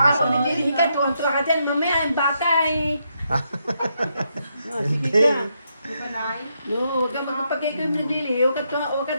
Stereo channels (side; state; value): both; inverted; correlation -0.79